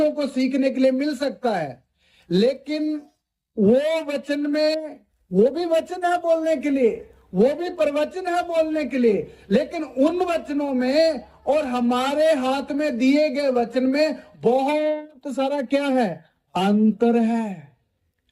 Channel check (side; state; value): both; identical; correlation 1.00